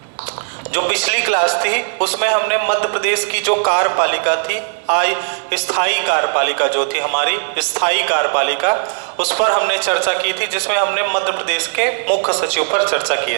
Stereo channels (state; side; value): silent; left; digital silence